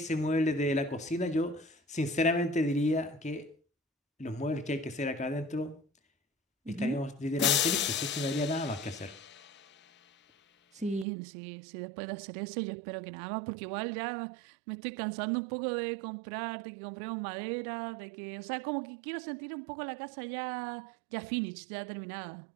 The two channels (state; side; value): drops out; left; at 11.1 s